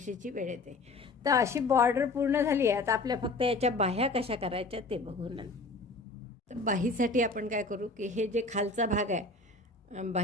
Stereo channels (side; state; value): right; quieter; 3.4 dB